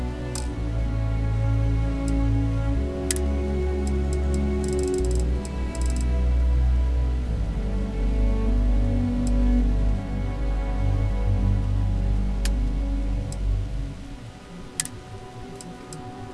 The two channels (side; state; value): both; identical; correlation 1.00